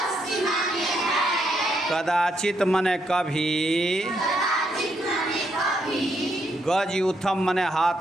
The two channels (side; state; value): both; normal; correlation 0.77